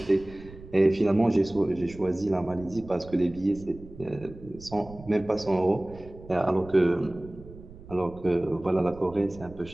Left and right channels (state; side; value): noise; right; rumble, 18 dB below the sound